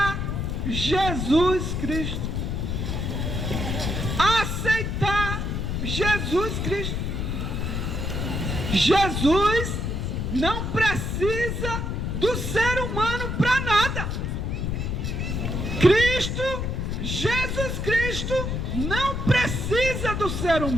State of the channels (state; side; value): noise; left; rumble, 2 dB below the sound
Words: Jesus Cristo. Aceitar Jesus Cristo. Jesus não precisa do ser humano para nada. Cristo, Jesus Cristo, não precisa do ser